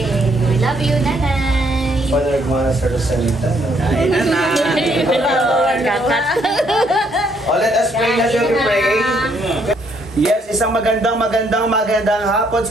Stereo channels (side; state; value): both; normal; correlation 0.70